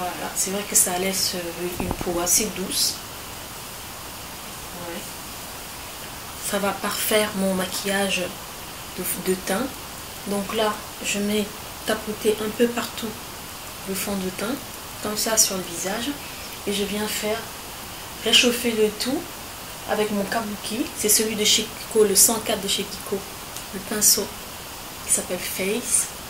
c'est vrai que ça laisse une peau assez douce. Ouais. Ça va parfaire mon maquillage de teint. Donc là, je mets tapoter un peu partout le fond de teint, comme ça sur le visage. Et je viens faire réchauffer le tout avec mon kabuki. C'est celui de chez Kiko, le 104 de chez Kiko. Le pinceau qui s'appelle Face.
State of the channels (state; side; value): identical; both; correlation 1.00